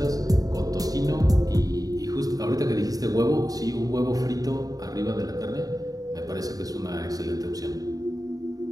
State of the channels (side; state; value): left; late; 0.18 ms